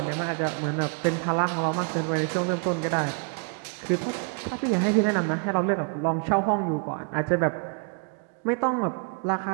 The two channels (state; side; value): quieter; left; 38.3 dB